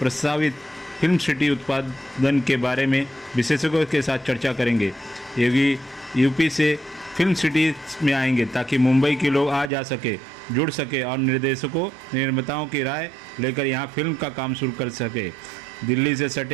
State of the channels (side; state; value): left; drops out; at 9.7 s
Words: फिल्म सिटी उत्पादन के बारे में विशेषज्ञों के साथ चर्चा करेंगे। योगी यूपी से फिल्म सिटी में आएंगे ताकि मुंबई के लोग आ जा सके, जुड़ सके और निर्देशकों निर्माताओं की राय लेकर यहां फिल्म का काम शुरू कर सके। दिल्ली से